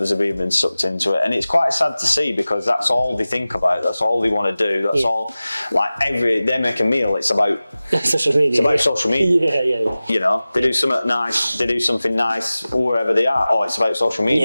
have even been sucked into it, and it's quite sad to see, because that's all they think about, that's all they want to do, that's all, like, they make a meal, it's about social media. It's about social media. Yeah. You know, they do something nice wherever they are. Oh, it's about social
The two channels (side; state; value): both; inverted; correlation -0.97